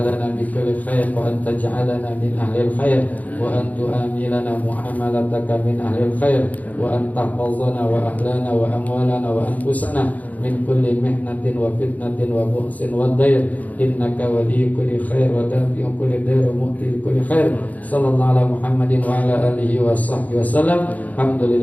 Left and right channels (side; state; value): right; late; 0.076 ms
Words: lana bi kulli khair wa an taj'alana min ahlil khair wa an tu'amilana muamalataka min ahlil khair wa an tahfazana wa ahlana wa amwalana wa anfusana min kulli mihnatin wa fitnatin wa bu'sin wa dair. Innaka waliyyu kulli khair wa dafi'u kulli dair wa mu'ti kulli khair. Sallallahu ala Muhammadin wa ala alihi wa sahbihi wasallam.